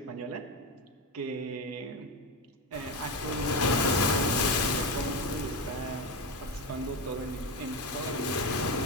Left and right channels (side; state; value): both; normal; correlation 0.17